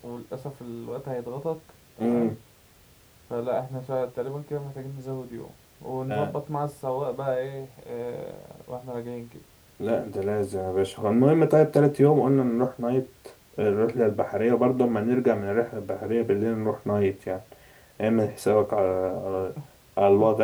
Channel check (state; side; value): identical; both; correlation 1.00